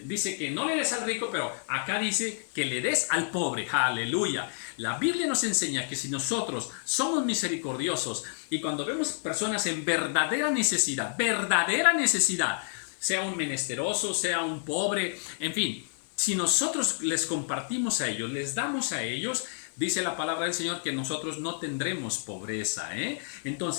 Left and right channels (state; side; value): silent; right; digital silence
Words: dice que no le des al rico, pero acá dice que le des al pobre. ¡Aleluya! La Biblia nos enseña que si nosotros somos misericordiosos y cuando vemos personas en verdadera necesidad, sea un menesteroso, sea un pobre, en fin, si nosotros les compartimos a ellos, les damos a ellos, dice la palabra del Señor que nosotros no tendremos pobreza, ¿eh?